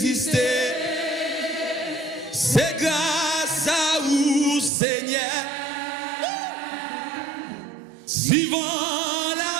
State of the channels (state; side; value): drops out; left; at 4.7 s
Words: c'est grâce à vous, Seigneur. Si vent